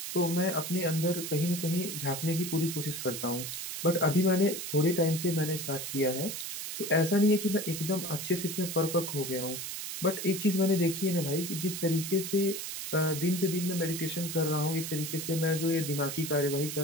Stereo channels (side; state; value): right; noise; hiss, 6 dB below the sound